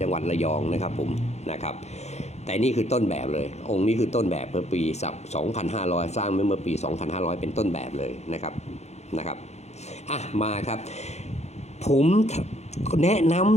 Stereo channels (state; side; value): late; right; 0.32 ms